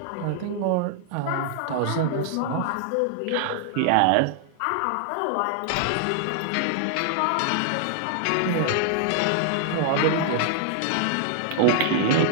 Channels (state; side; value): different; both; correlation -0.01